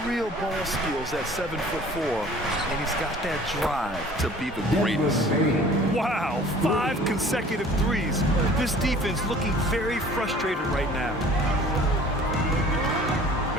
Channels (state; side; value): normal; both; correlation 0.49